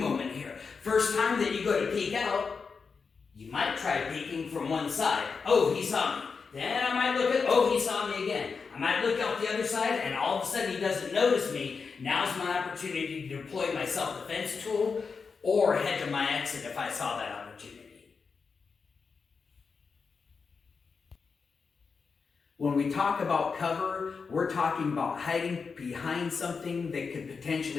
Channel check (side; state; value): right; quieter; 5.2 dB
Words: here. First time that you go to peek out, you might try peeking from one side. Oh, he saw me. Then I might look at, oh, he saw me again. I might look out the other side, and all of a sudden he doesn't notice me. Now's my opportunity to deploy my self-defense tool or head to my exit if I saw that opportunity. When we talk about cover, we're talking about hiding behind something that could